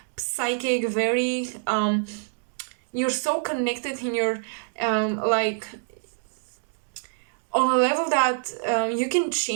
psychic, very you're so connected in your like on a level that you can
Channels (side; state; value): left; silent; digital silence